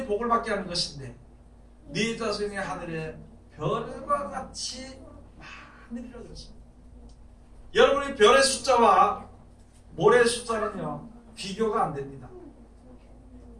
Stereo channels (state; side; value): identical; both; correlation 1.00